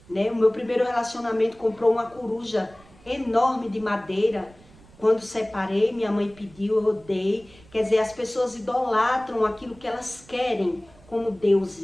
Né? O meu primeiro relacionamento comprou uma coruja enorme de madeira. Quando separei, minha mãe pediu, eu dei. Quer dizer, as pessoas idolatram aquilo que elas querem como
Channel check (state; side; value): noise; right; rumble, 25 dB below the sound